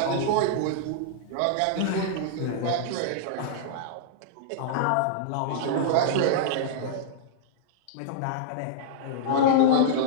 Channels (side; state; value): both; different; correlation -0.02